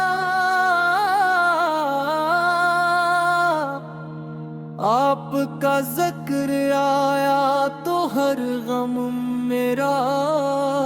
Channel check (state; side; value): identical; both; correlation 1.00